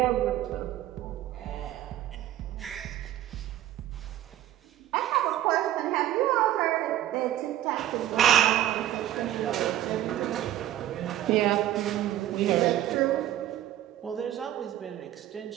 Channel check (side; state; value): left; quieter; 12.8 dB